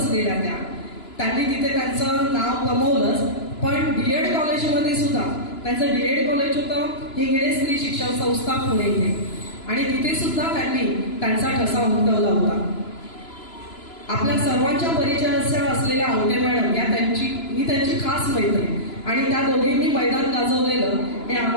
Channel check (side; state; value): right; late; 2.9 ms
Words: त्यांनी तिथे त्यांचं नाव कमवलंच. पण DED कॉलेजमध्ये सुद्धा त्यांचं DED कॉलेज होतं हिंगणे स्त्री शिक्षण संस्था पुणे इथे, आणि तिथे सुद्धा त्यांनी त्यांचा ठसा उमटवला होता. आपल्या सर्वांच्या परिचयाच्या असलेल्या आवटे मॅडम या मी त्यांची खास मैत्रीण, आणि त्या दोघींनी मैदान गाजवलेलं हे